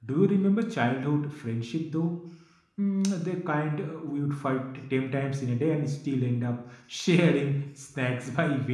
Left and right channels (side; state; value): both; identical; correlation 1.00